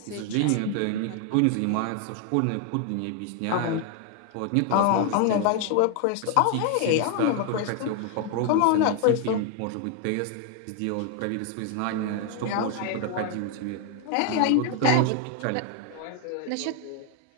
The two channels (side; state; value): both; different; correlation 0.00